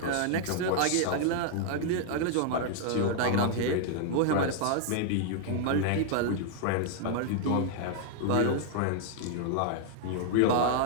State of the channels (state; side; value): different; both; correlation -0.01